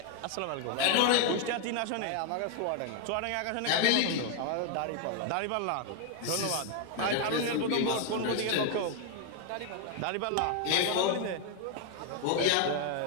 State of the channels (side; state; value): both; different; correlation 0.00